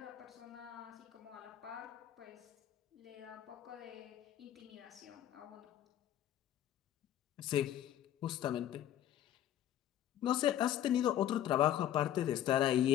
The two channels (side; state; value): right; quieter; 11.5 dB